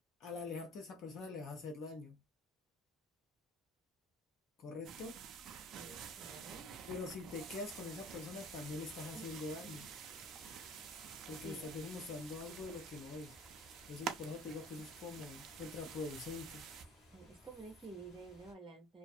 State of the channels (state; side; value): normal; both; correlation 0.47